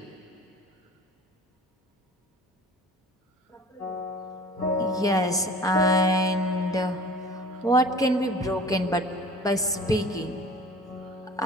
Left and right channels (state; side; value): normal; both; correlation 0.43